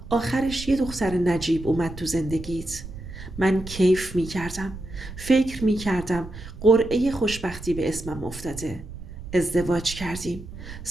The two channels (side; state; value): right; noise; rumble, 12 dB below the sound